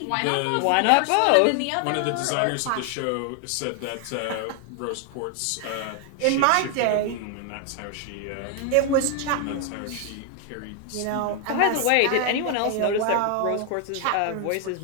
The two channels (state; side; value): different; both; correlation 0.00